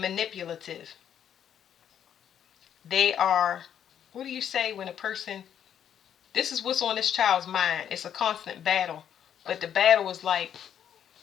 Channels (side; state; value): right; quieter; 9.3 dB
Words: They are, what do you say when a person, this is what's on this child's mind. It's a constant battle. But the battle is like